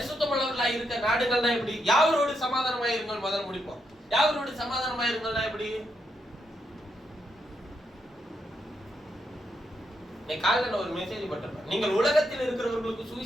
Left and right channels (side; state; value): both; normal; correlation 0.81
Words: இருக்க நாடுகள்னா எப்படி? யாவரோடு சமாதானமா இருங்கள் முதல்ல முடிப்போம். யாவரோடு சமாதானமா இருங்கள்னா எப்படி? காலையில ஒரு மெசேஜ் போட்டிருப்பேன், நீங்கள் உலகத்தில் இருக்கிறவர்களுக்கு